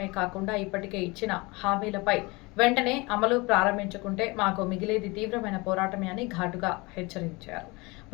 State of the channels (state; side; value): quieter; right; 25.1 dB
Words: కాకుండా ఇప్పటికే ఇచ్చిన హామీలపై వెంటనే అమలు ప్రారంభించుకుంటే మాకు మిగిలేది తీవ్రమైన పోరాటమే అని ఘాటుగా హెచ్చరించారు.